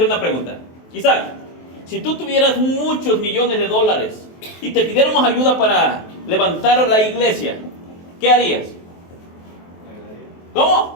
una pregunta. Isaac, si tú tuvieras muchos millones de dólares y te pidiéramos ayuda para levantar la iglesia, ¿qué harías?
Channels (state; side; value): late; right; 23 ms